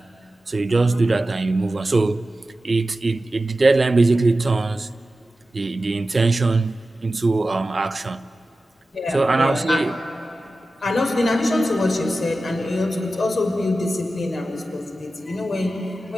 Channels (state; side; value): normal; both; correlation 0.94